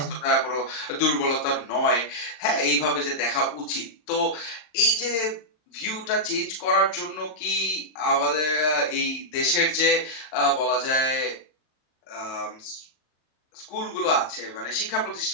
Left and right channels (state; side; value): late; right; 39 ms